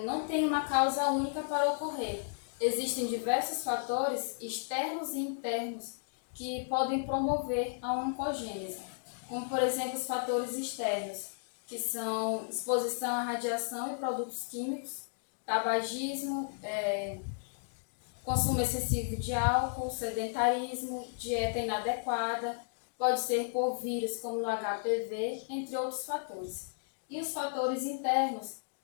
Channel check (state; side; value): silent; right; digital silence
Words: não tem uma causa única para ocorrer. Existem diversos fatores externos e internos que podem promover a oncogênese, como por exemplo os fatores externos, que são exposição à radiação e produtos químicos, tabagismo, consumo excessivo de álcool, sedentarismo, dieta inadequada, pode ser por vírus como no HPV, entre outros fatores. E os fatores internos,